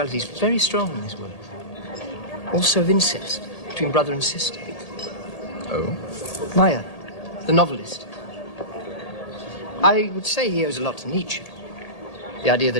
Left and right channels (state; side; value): late; right; 1.8 ms